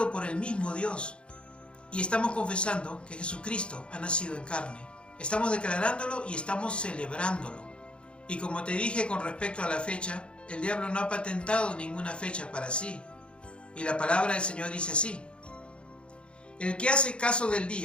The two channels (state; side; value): late; right; 0.056 ms